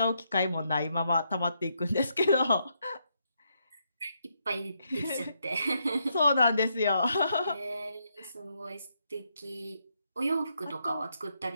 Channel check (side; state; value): both; inverted; correlation -0.78